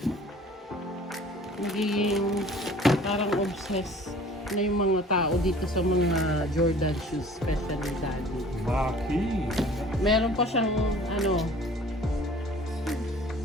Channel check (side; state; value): both; normal; correlation 0.49